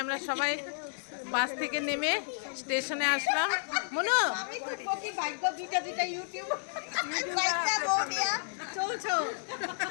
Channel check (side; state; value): right; silent; digital silence